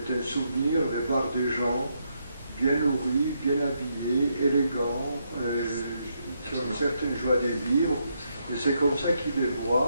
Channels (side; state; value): both; inverted; correlation -0.79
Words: un souvenir de voir des gens bien nourris, bien habillés, élégants, qui ont une certaine joie de vivre, et c'est comme ça qu'il les